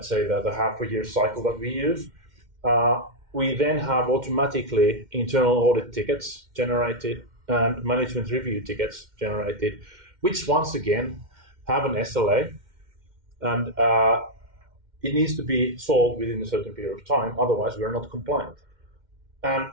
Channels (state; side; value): late; left; 2.1 ms